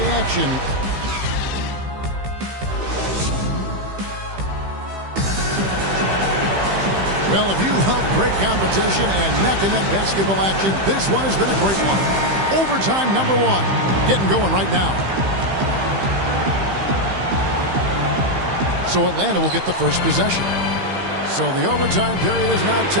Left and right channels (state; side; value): late; left; 15 ms